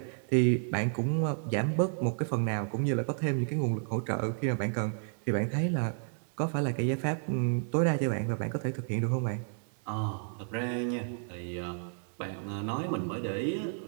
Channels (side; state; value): left; silent; digital silence